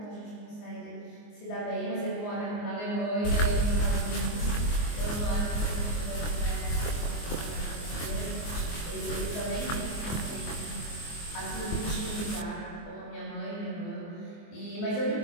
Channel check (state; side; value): late; right; 24 ms